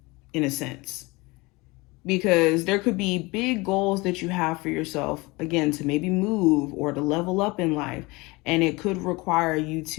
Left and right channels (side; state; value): right; quieter; 23.9 dB